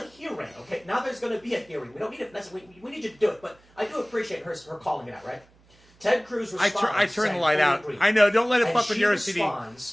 hearing, okay? Now there's going to be a hearing. We don't need it if necessary. We need you to do it, but I do appreciate her calling it out, right? Ted Cruz responds. I turn the light out. I know. Don't let it fuck with your OCD. She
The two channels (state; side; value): noise; right; hum, 30 dB below the sound